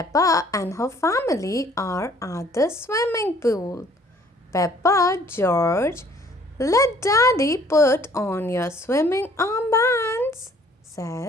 and her family are at the swimming pool. Peppa, George, let Daddy put on your swimming armbands,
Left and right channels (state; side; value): normal; both; correlation 0.58